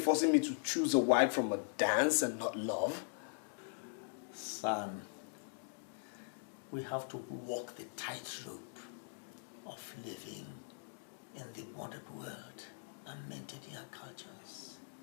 me to choose a wife from a dance and not love? Son, we have to walk the tightrope of living in the modern world and maintaining our cultures.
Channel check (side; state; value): right; silent; digital silence